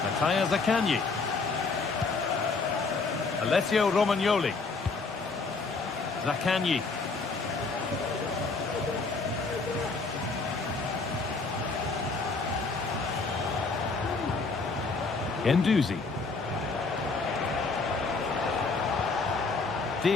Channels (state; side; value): quieter; right; 4.1 dB